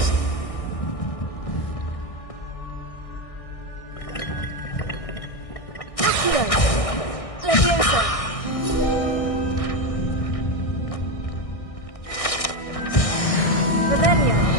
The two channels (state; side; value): late; right; 1.6 ms